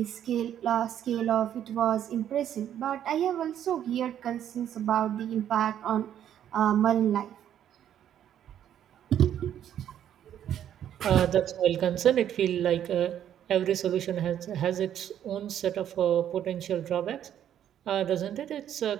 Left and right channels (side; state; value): left; quieter; 10.3 dB